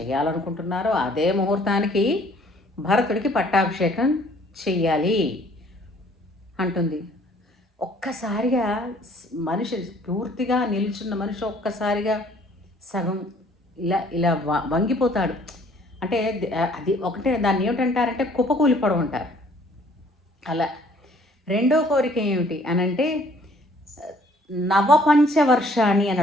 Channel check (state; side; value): normal; both; correlation 0.58